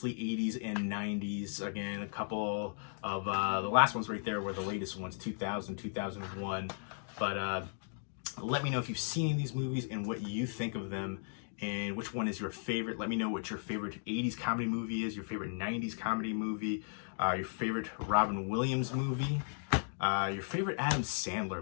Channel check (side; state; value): right; silent; digital silence